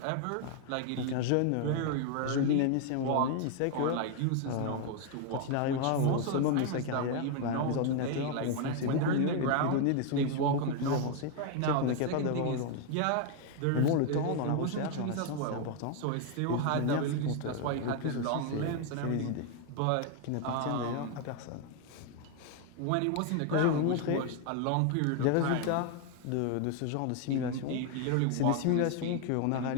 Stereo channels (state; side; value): different; both; correlation 0.01